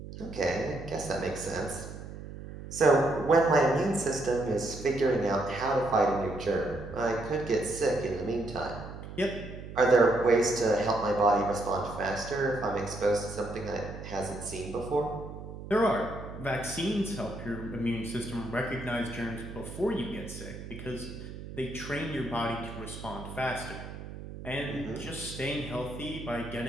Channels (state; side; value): noise; right; hum, 11 dB below the sound